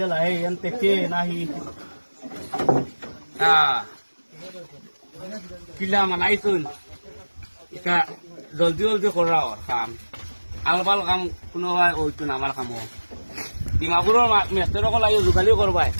lại em tê chê na hi kila mà nãy tuần ka joldi kora kam albal kam kuno hai oi tu namar kamo dimapuro mestero ko layo jugali korbai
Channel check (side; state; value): both; inverted; correlation -1.00